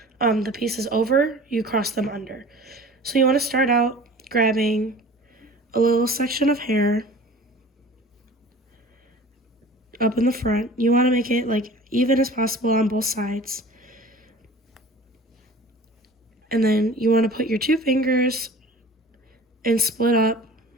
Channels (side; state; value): both; normal; correlation 0.43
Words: the pieces over, you cross them under. So you want to start out grabbing a little section of hair up in the front. You want to make it like even as possible on both sides. And then you want to put your 2 fingers and split up